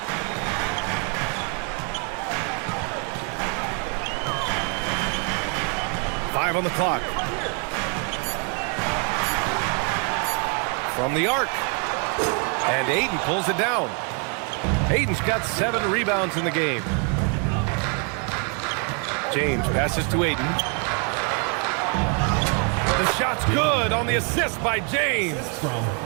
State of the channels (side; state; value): left; quieter; 38.2 dB